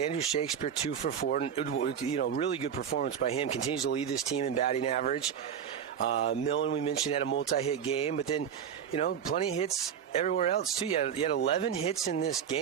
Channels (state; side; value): quieter; left; 8.2 dB